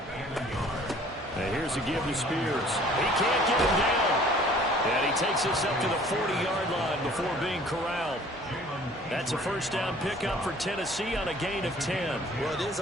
And here's a give to Spears. He can't get him down. And he takes this up to the 40-yard line before being corralled. That's a first down pickup for Tennessee on a gain of 10. Well, it is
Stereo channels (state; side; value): normal; both; correlation 0.53